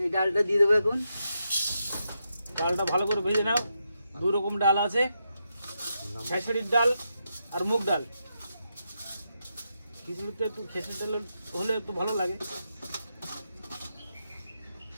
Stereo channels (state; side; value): inverted; both; correlation -0.84